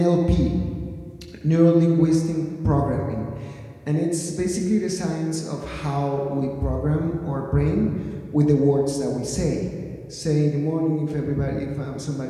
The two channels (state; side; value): identical; both; correlation 1.00